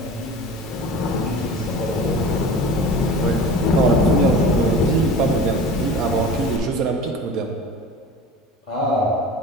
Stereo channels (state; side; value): normal; both; correlation 0.37